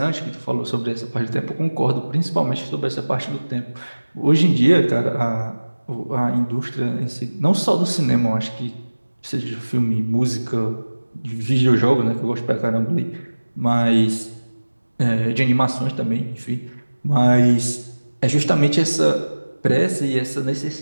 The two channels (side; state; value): both; inverted; correlation -1.00